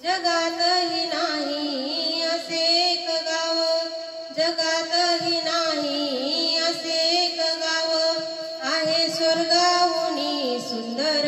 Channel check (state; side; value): identical; both; correlation 1.00